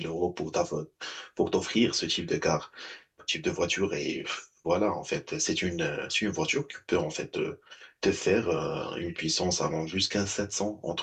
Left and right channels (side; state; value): both; identical; correlation 1.00